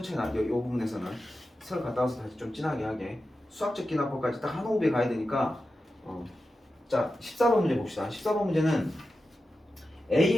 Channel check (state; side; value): normal; both; correlation 0.91